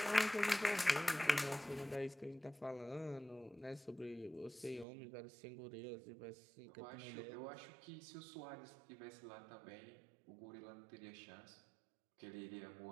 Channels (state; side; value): drops out; left; at 4.9 s